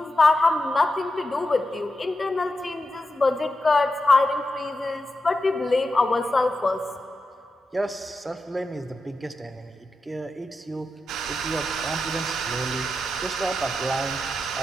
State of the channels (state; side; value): normal; both; correlation 0.89